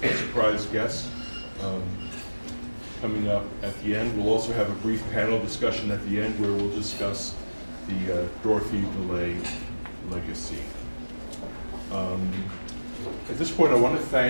guests coming up at the end. We'll also have a brief panel discussion at the end where we'll discuss the Dorothy DeLay legacy. At this point, I want to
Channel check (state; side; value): inverted; both; correlation -1.00